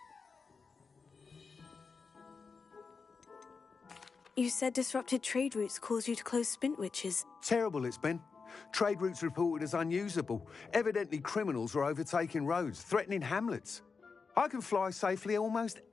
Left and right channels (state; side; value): quieter; right; 5.0 dB